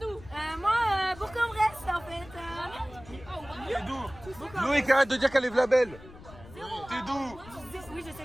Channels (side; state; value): left; noise; rumble, 19 dB below the sound